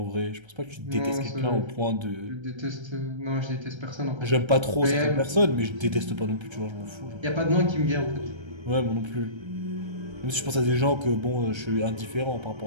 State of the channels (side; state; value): left; late; 1.3 ms